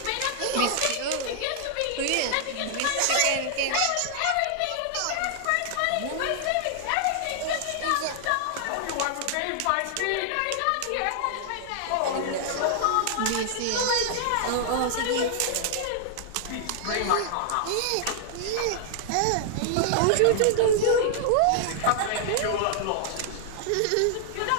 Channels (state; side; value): different; both; correlation 0.00